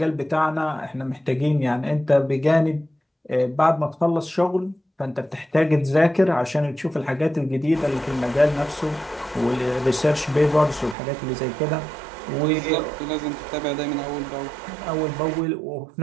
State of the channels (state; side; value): drops out; left; at 11.0 s